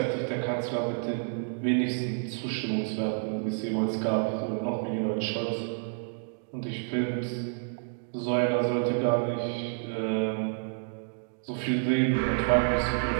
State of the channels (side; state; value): left; silent; 58 dB below the other